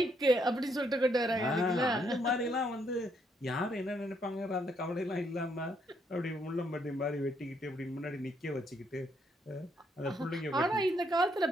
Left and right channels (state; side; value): normal; both; correlation 0.73